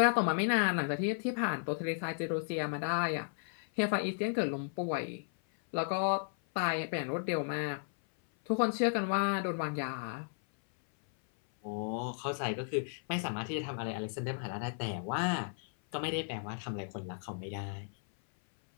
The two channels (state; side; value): silent; right; 55 dB below the other